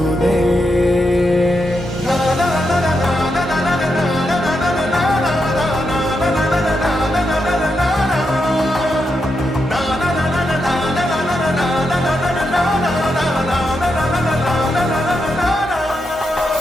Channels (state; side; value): normal; both; correlation 0.84